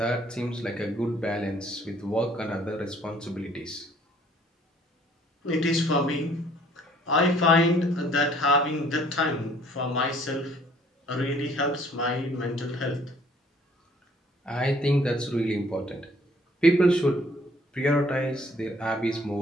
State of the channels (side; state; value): both; normal; correlation 0.59